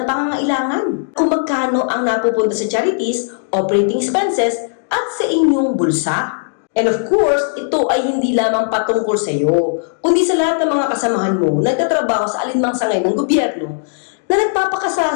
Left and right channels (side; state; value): right; silent; digital silence